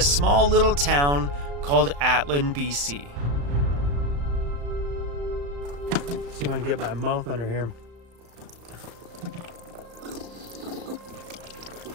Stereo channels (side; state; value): left; late; 35 ms